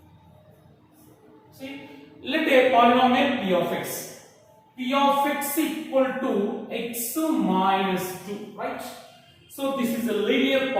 See, let a polynomial p of x equal to x minus 2, right? So this is a linear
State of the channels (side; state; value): both; identical; correlation 1.00